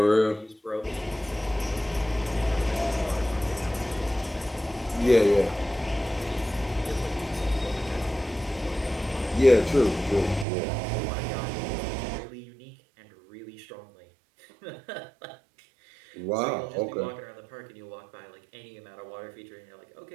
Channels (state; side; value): drops out; left; at 10.5 s